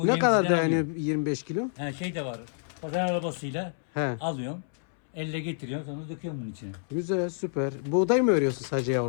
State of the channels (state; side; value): silent; right; 59 dB below the other